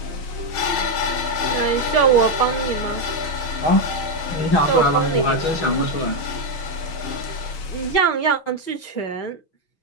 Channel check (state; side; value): late; right; 6.3 ms